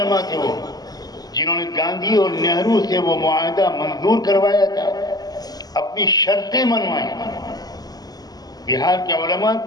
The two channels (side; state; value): right; late; 0.19 ms